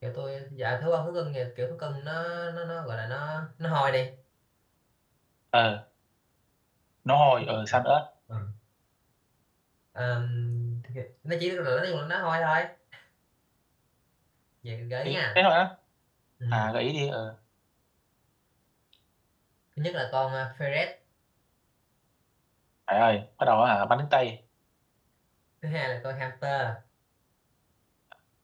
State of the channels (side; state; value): both; identical; correlation 1.00